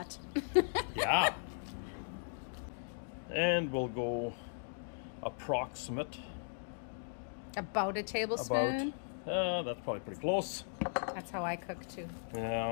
Yeah. And we'll go approximate. About a tablespoon. That's probably pretty close. That's how I cook too.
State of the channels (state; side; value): silent; right; digital silence